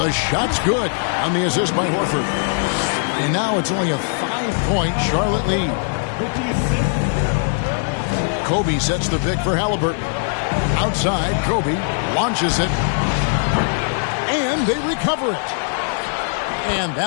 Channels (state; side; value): silent; right; 56 dB below the other